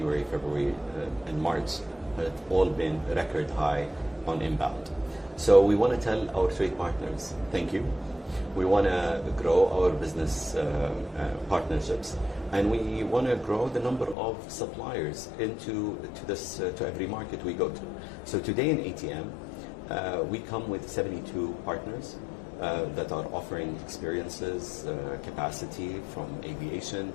February, and March have all been record high on inbound. So we want to tell our trade partners, thank you. We want to grow our business partnerships, and we want to grow the number of suppliers to every market we go to. So today in ATM, we come with 72 partners that are offering experiences, capacity from aviation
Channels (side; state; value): right; drops out; at 14.2 s